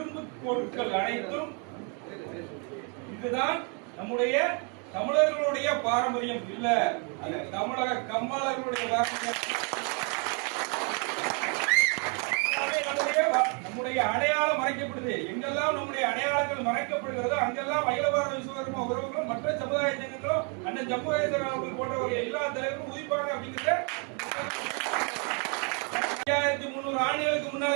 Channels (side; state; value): left; quieter; 37.0 dB